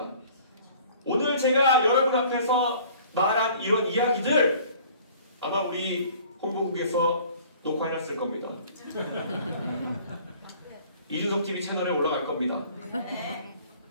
오늘 제가 여러분 앞에서 말한 이런 이야기들 아마 우리 홍보국에서 녹화해놨을 겁니다. 이준석 TV 채널에 올라갈 겁니다.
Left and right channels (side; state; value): both; inverted; correlation -0.51